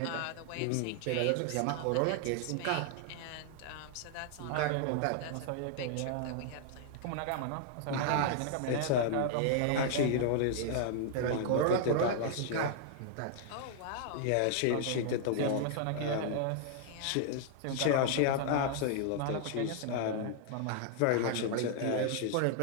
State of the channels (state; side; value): different; both; correlation 0.00